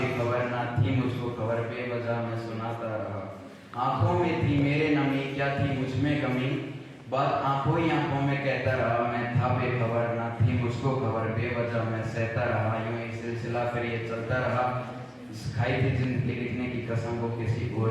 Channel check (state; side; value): identical; both; correlation 1.00